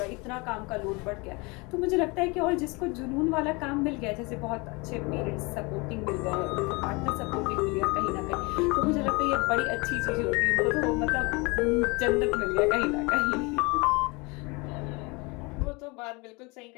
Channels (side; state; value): right; quieter; 27.4 dB